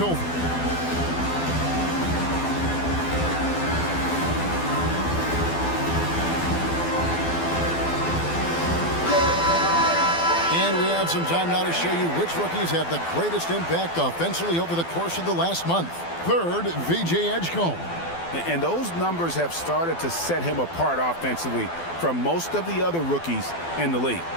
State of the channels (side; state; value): right; late; 12 ms